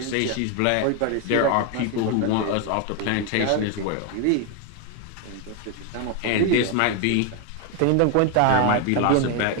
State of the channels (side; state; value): both; different; correlation 0.01